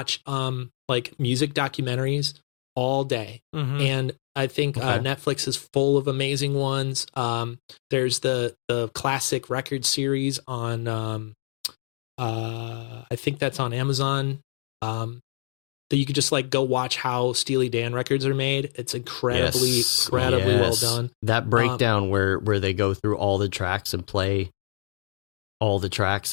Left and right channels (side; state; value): right; silent; digital silence